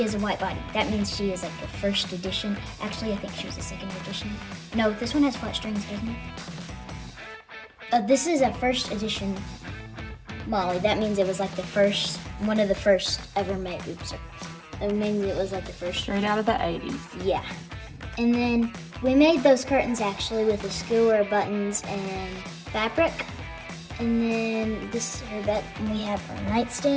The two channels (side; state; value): both; identical; correlation 1.00